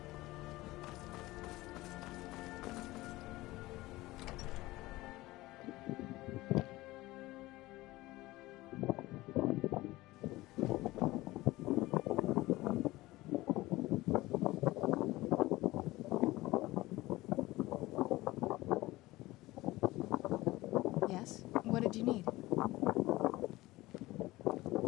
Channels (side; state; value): right; quieter; 18.8 dB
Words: Yes? What did you need?